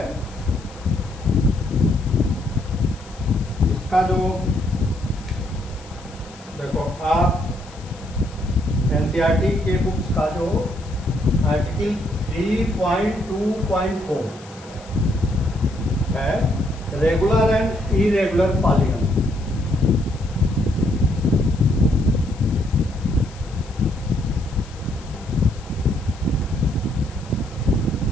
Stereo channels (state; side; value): noise; left; hiss, 22 dB below the sound